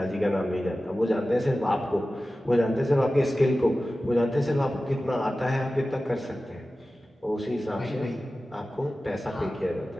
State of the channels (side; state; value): both; normal; correlation 0.95